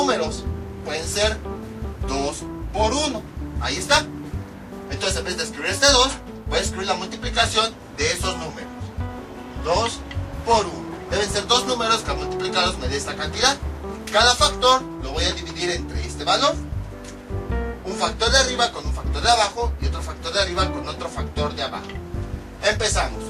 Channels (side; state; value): both; identical; correlation 1.00